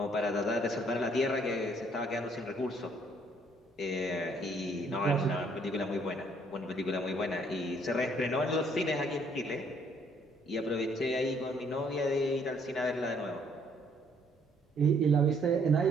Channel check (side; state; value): both; normal; correlation 0.65